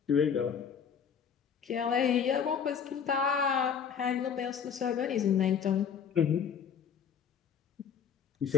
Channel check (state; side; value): quieter; right; 7.4 dB